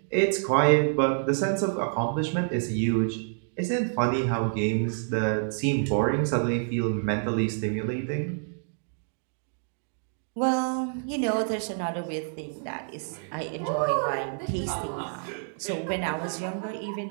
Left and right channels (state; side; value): silent; left; digital silence